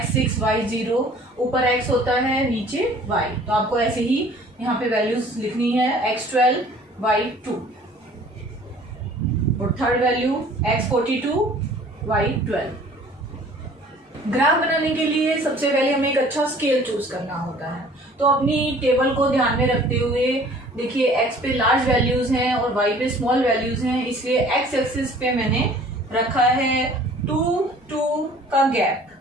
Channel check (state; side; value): normal; both; correlation 0.51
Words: y0, ऊपर x होता है नीचे y, तो आपको ऐसे ही यहाँ पे वैल्यूज लिखनी है, x12 y2, और third value x42 y12। Graph बनाने के लिए सबसे पहले हमें एक अच्छा स्केल चूज करना होता है। तो अपनी टेबल को ध्यान में रखते हुए देखिए x पे लार्ज वैल्यूज हैं और y पे स्मॉल वैल्यूज हैं, इसलिए x एक्सिस पे मैंने रखा है 2 2 का गैप,